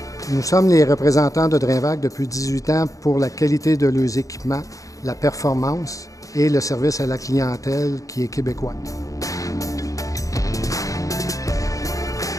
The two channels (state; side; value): late; right; 0.16 ms